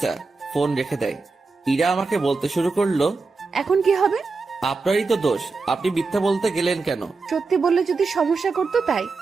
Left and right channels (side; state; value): left; quieter; 4.1 dB